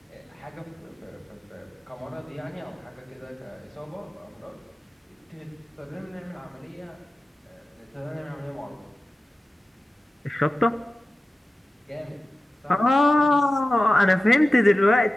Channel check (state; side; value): normal; both; correlation 0.95